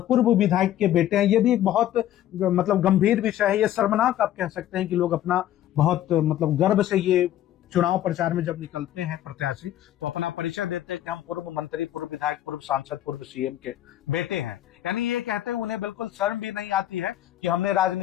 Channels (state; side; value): quieter; right; 12.6 dB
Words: पूर्व विधायक के बेटे हैं। ये भी एक बहुत मतलब गंभीर विषय है। ये शर्मनाक आप कह सकते हैं कि लोग अपना बहुत मतलब गर्व से ये चुनाव प्रचार में जब निकलते हैं प्रत्याशी तो अपना परिचय देते हैं कि हम पूर्व मंत्री, पूर्व विधायक, पूर्व सांसद, पूर्व सीएम के बेटे हैं। यानी ये कहते हैं उन्हें बिल्कुल शर्म भी नहीं आती है कि हमने